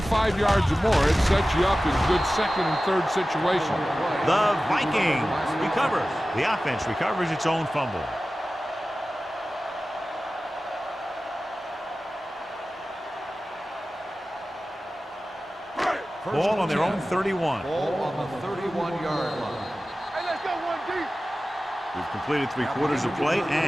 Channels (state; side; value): normal; both; correlation 0.96